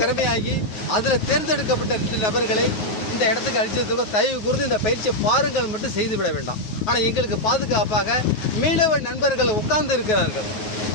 அதில் தேர்ந்தெடுக்கப்பட்ட 2 நபர்களை இந்த இடத்துக்கு அழிச்சதுக்கு தயவு கூர்ந்து இந்த பயிற்சியை பாருங்கள் மட்டும் செய்துவிட வேண்டாம். ஆனால் எங்களுக்கு பாதுகாப்பாக மீனவ நண்பர்கள் உட்கார்ந்து இருக்கிறார்கள்,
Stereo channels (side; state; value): right; late; 9.4 ms